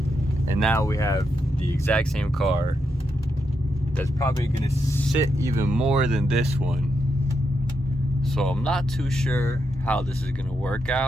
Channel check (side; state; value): both; normal; correlation 0.83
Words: And now we have the exact same car that's probably gonna sit even more than this one. So I'm not too sure how this is gonna work